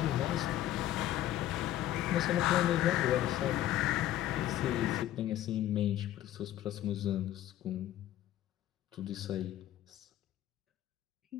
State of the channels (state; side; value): quieter; right; 13.2 dB